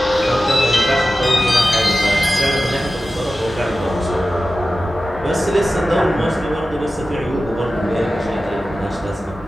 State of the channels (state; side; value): normal; both; correlation 0.94